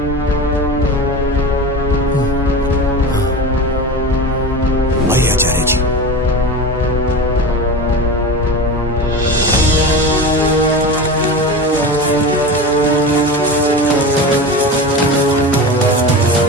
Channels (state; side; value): normal; both; correlation 0.27